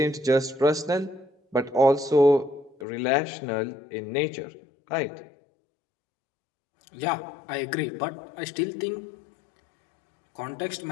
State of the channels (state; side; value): drops out; right; at 2.9 s